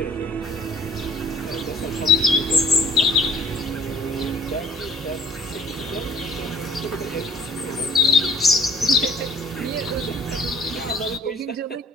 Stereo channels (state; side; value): normal; both; correlation 0.57